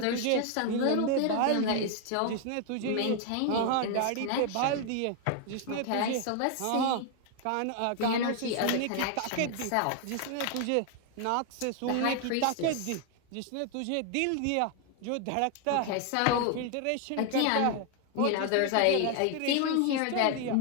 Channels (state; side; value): different; both; correlation 0.00